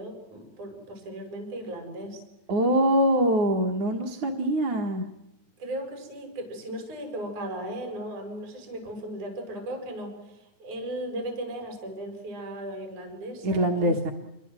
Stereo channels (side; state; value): left; late; 9.1 ms